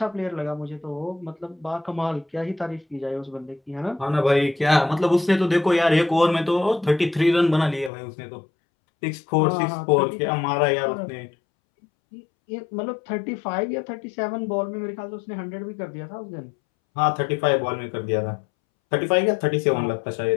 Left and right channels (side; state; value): right; drops out; at 7.9 s